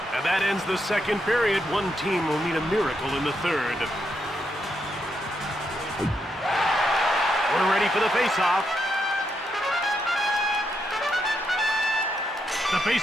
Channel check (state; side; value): normal; both; correlation 0.81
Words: And that ends the second period. One team will need a miracle in the third. We're ready for the faceoff. The